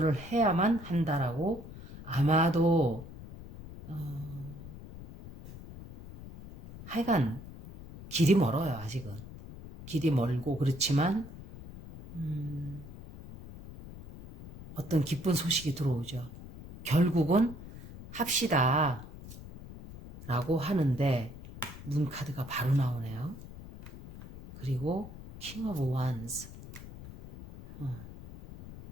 해야만 한다라고 아마도 하여간 길이 멀어요. 아직은. 길이 멀고 그렇지만 어떤 기쁜 소식이 들어오죠. 결국은 합시다 라고 하는데 문 카드가 바로 나오네요. 그리고 King of Wands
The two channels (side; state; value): left; noise; rumble, 14 dB below the sound